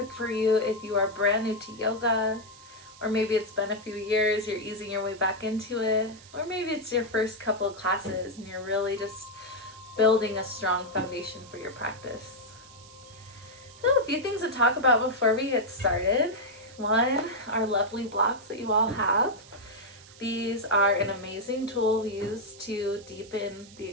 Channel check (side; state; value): right; noise; hiss, 21 dB below the sound